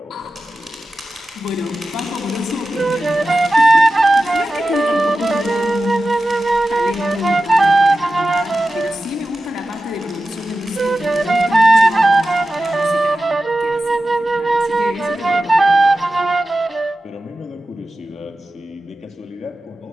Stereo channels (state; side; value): normal; both; correlation 0.94